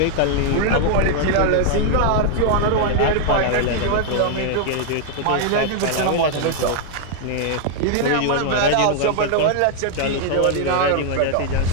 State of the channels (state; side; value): different; both; correlation 0.00